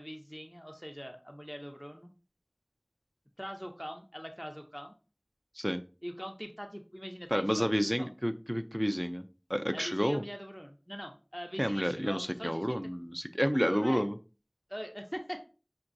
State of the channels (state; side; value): identical; both; correlation 1.00